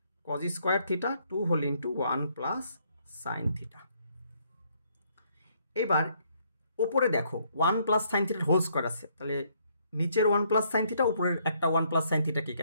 cos square theta 2 whole into 1 plus sine theta. এবার ওপরে দেখো 1 প্লাস সাইন থিটার হোল স্কোয়ার আছে, তাহলে নিচের 1 প্লাস সাইন থিটা উপরের একটা 1 প্লাস সাইন থিটা কি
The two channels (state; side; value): inverted; both; correlation -0.69